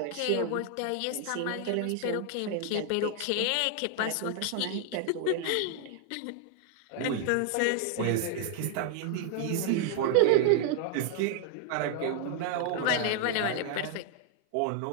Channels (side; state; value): both; different; correlation 0.00